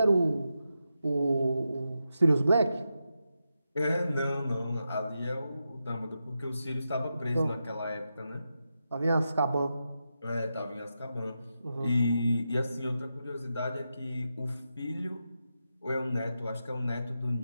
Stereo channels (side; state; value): both; inverted; correlation -0.87